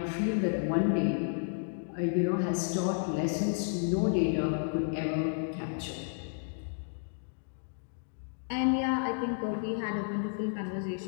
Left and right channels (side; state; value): right; silent; digital silence